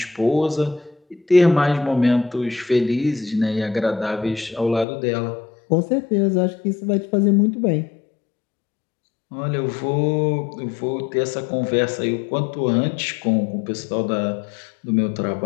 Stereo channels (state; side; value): drops out; right; at 4.9 s